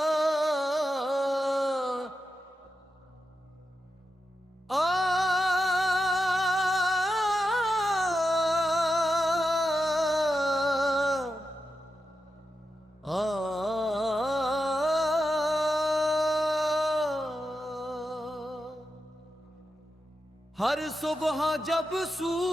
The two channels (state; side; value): normal; both; correlation 0.89